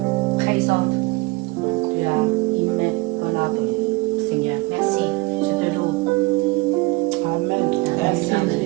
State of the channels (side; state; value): left; quieter; 23.6 dB